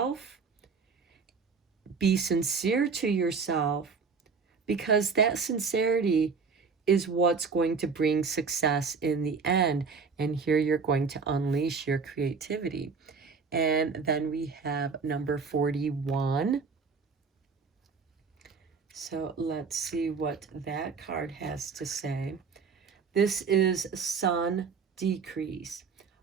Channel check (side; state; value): left; quieter; 5.1 dB